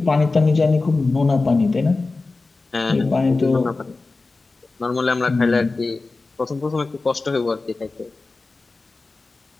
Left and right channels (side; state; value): right; quieter; 3.6 dB